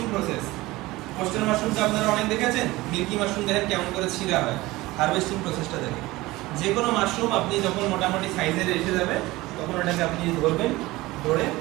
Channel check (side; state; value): left; quieter; 19.6 dB